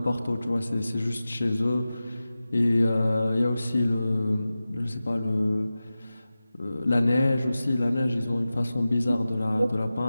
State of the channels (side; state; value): both; inverted; correlation -0.96